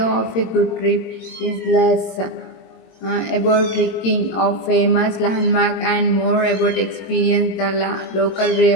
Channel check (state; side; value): late; right; 22 ms